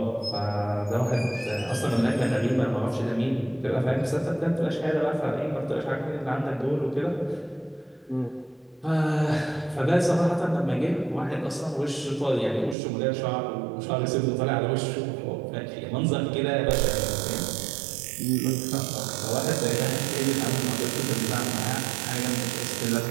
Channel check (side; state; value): left; drops out; at 12.8 s